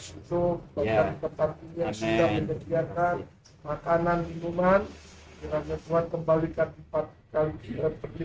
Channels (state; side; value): identical; both; correlation 1.00